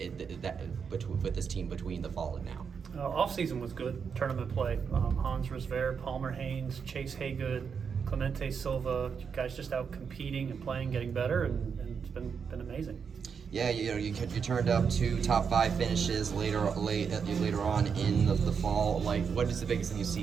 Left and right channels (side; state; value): left; quieter; 6.3 dB